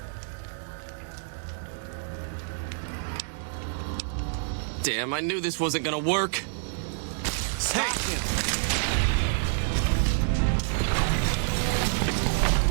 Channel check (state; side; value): silent; left; digital silence